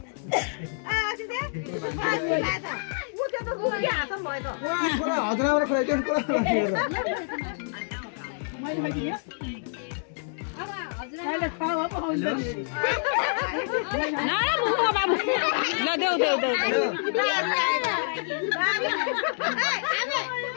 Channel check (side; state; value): right; silent; digital silence